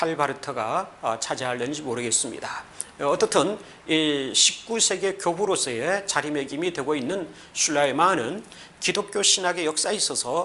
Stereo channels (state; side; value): identical; both; correlation 1.00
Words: 바르트가 차지하려는지 모르겠습니다. 어떻든 이 19세기의 교부로서의 자리매김이 되고 있는 슐라이마는 기독교 신학의 역사에